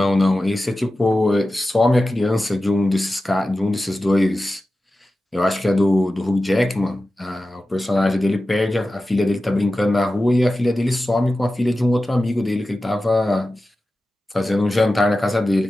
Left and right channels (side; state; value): both; normal; correlation 0.94